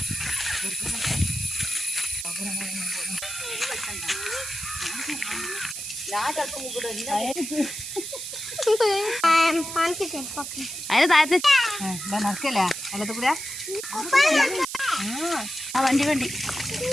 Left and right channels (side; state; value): right; noise; hiss, 7 dB below the sound